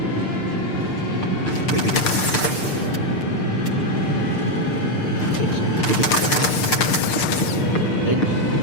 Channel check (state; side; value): late; right; 6.7 ms